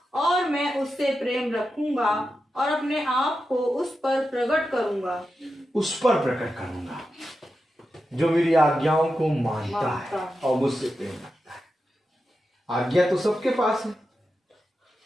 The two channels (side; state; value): both; normal; correlation 0.90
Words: और मैं उससे प्रेम रखूंगा और अपने आप को उस पर प्रकट करूंगा। उस पर प्रकट करूंगा जो मेरी आज्ञाओं को मानता है और मुझसे प्रेम रखता है। आज्ञा तो सबके पास है,